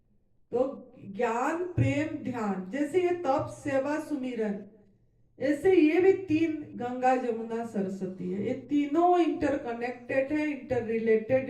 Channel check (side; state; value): both; identical; correlation 1.00